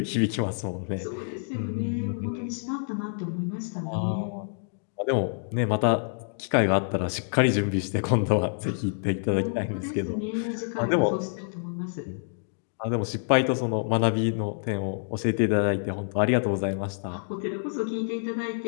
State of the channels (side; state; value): right; silent; digital silence